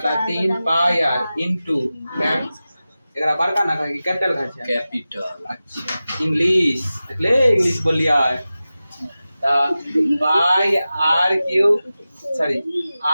पाई आर इंटू एकरा बड़का ना कहे कैपिटल कहे कैपिटल। अच्छा इंग्लिश ले इंग्लिश बोलिया pi r cube, sorry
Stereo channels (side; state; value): both; inverted; correlation -0.95